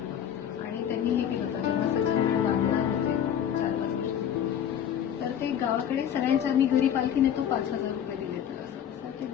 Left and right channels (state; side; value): quieter; right; 9.4 dB